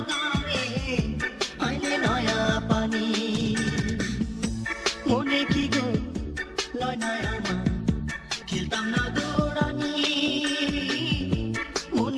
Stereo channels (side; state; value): both; identical; correlation 1.00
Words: গানে আইলে নয়া পানি। মনে কি গো লয় নয়া মা, খেলতাম না দৌড়ানি,